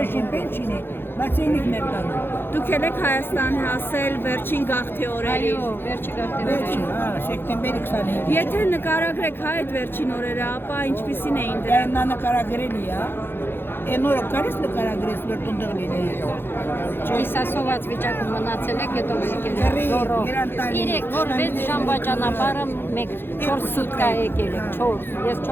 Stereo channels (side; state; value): right; late; 0.10 ms